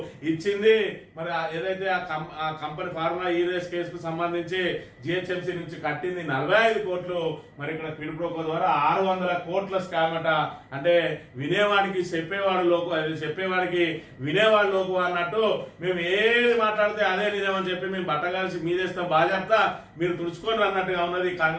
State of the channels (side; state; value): both; identical; correlation 1.00